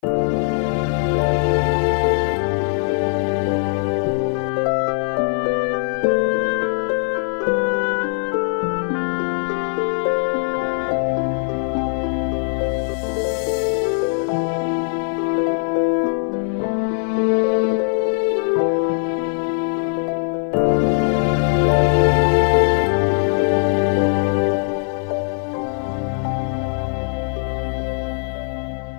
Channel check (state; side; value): silent; right; 57 dB below the other